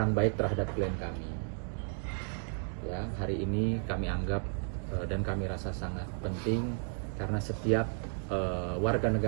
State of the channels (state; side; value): silent; left; 56 dB below the other